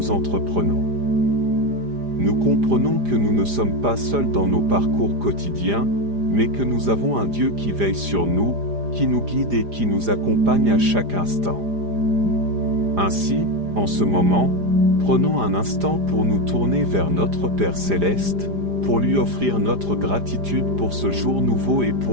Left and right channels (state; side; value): late; left; 4.9 ms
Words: entreprenons. Nous comprenons que nous ne sommes pas seuls dans nos parcours quotidiens, mais que nous avons un Dieu qui veille sur nous, qui nous guide et qui nous accompagne à chaque instant. Ainsi, en ce moment, prenons un instant pour nous tourner vers notre Père Céleste, pour lui offrir notre gratitude pour ce jour nouveau et